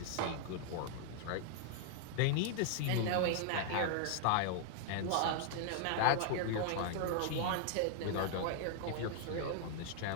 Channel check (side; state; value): both; different; correlation 0.00